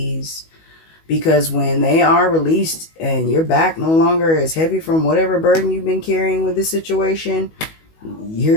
Because when they are released and your back no longer is heavy from whatever burden you've been carrying with this situation,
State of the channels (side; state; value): right; late; 19 ms